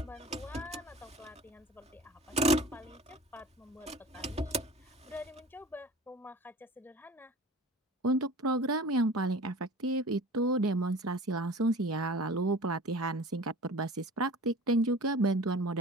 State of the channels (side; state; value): both; normal; correlation 0.40